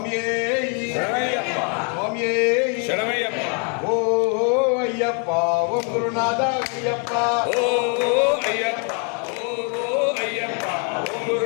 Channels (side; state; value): right; quieter; 39.3 dB